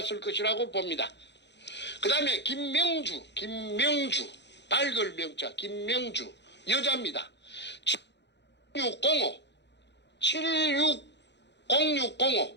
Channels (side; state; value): right; late; 0.51 ms